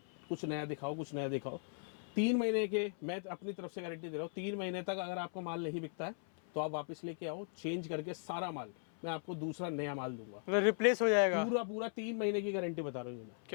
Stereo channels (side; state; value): right; silent; 52 dB below the other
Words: कुछ नया दिखाओ, कुछ नया दिखाओ, 3 महीने के मैं अपनी तरफ से गारंटी दे रहा हूँ, 3 महीने तक अगर आपका माल नहीं बिकता है तो आप वापस लेके आओ, चेंज करके सारा माल मैं आपको दूसरा नया माल दूंगा, मतलब रिप्लेस हो जाएगा पूरा 3 महीने की गारंटी बता रहा हूँ ये मैं।